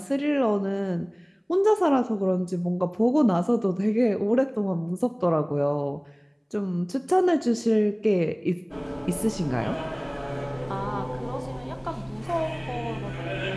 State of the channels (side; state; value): both; identical; correlation 1.00